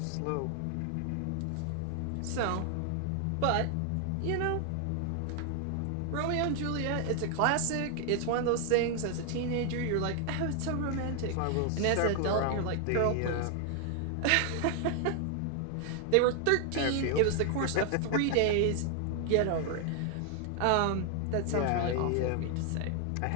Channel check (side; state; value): both; different; correlation 0.00